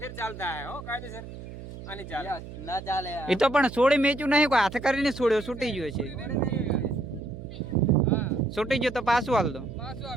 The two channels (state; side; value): noise; right; hum, 12 dB below the sound